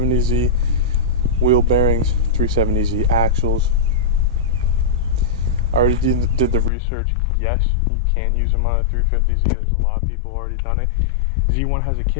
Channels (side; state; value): right; drops out; at 6.7 s